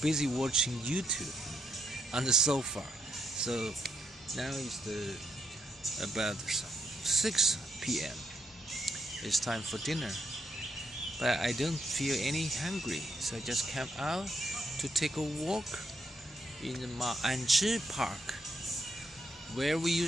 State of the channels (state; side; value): normal; both; correlation 0.78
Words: watching YouTube on the sofa. So now it's about 6 p.m. It's time for dinner. But I don't feel any hungry, so I just came out to take a walk in the Ma'anzhi Park, where we